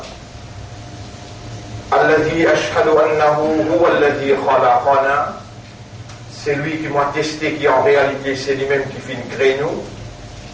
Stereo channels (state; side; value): identical; both; correlation 1.00